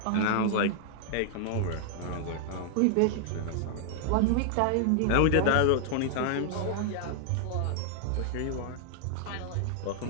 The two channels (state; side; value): different; both; correlation 0.00